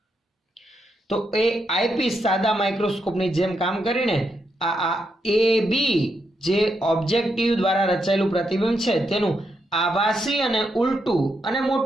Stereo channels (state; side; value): normal; both; correlation 0.81